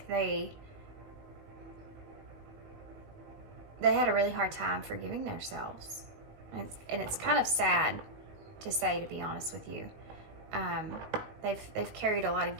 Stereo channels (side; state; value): left; late; 18 ms